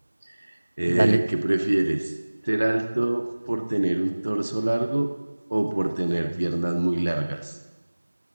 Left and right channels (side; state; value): both; inverted; correlation -1.00